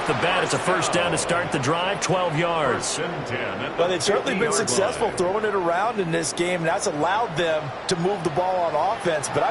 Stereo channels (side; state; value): both; identical; correlation 1.00